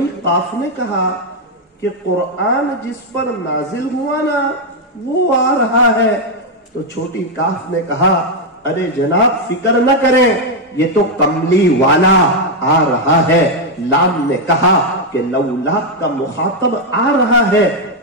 قاف نے کہا کہ قرآن جس پر نازل ہوا نا وہ آ رہا ہے. تو چھوٹی کاف نے کہا ارے جناب فکر نہ کریں یہ تو کملی والا آ رہا ہے. لام نے کہا کہ لولا کا مخاطب آ رہا ہے.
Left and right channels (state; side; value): normal; both; correlation 0.01